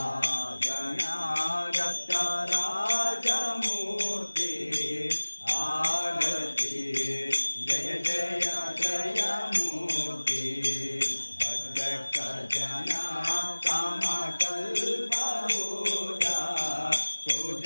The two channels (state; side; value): inverted; both; correlation -1.00